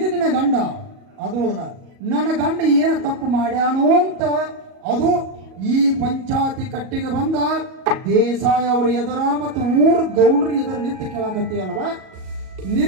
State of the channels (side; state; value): left; late; 37 ms